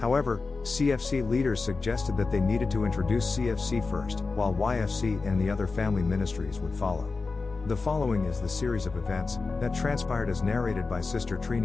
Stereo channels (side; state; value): right; quieter; 4.1 dB